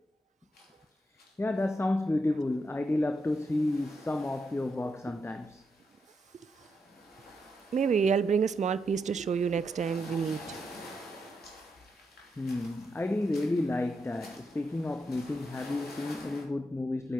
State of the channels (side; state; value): both; normal; correlation 0.83